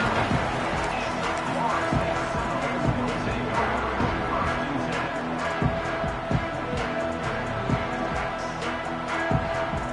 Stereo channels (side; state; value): both; identical; correlation 1.00